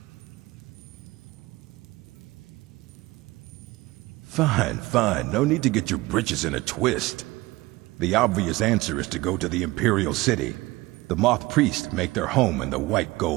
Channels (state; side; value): quieter; left; 20.3 dB